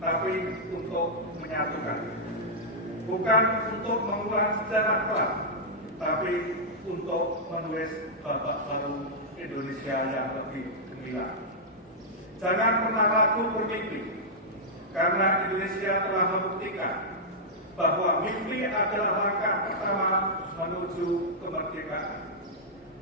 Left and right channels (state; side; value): normal; both; correlation -0.08